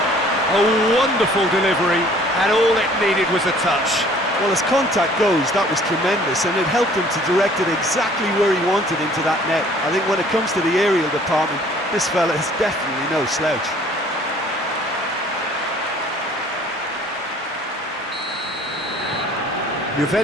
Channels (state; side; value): normal; both; correlation 0.54